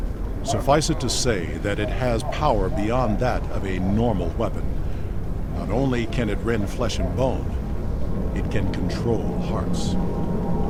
Suffice it to say that it has power beyond that of a normal weapon. Not only can it rend flesh and bone, it can control hearts.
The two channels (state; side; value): identical; both; correlation 1.00